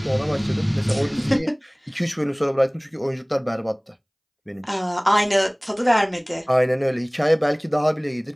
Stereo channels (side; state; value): both; identical; correlation 1.00